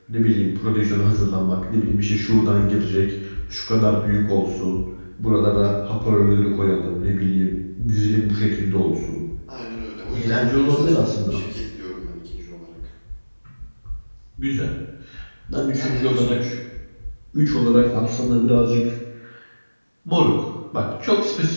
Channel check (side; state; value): both; inverted; correlation -1.00